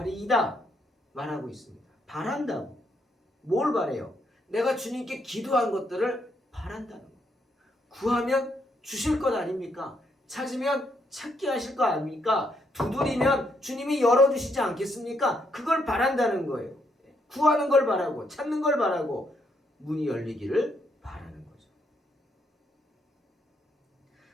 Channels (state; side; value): normal; both; correlation 0.75